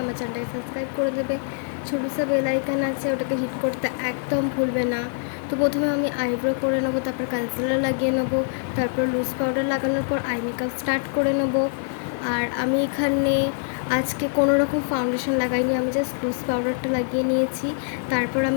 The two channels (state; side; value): silent; right; 62 dB below the other